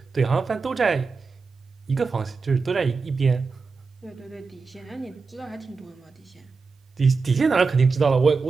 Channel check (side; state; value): left; quieter; 4.6 dB